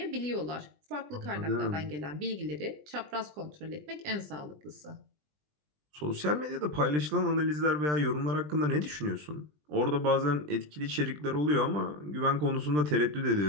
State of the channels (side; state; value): left; late; 20 ms